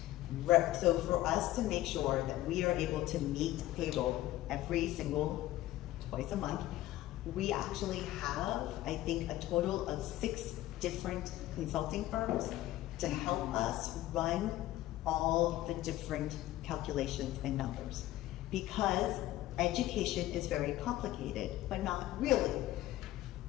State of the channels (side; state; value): right; quieter; 15.4 dB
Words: So for us to make sure that we are able to meet payroll twice a month, we actually have, I think, a total of 6 different consulting firms to help us run all the different calculations and numbers. Because education is very complicated, but not really.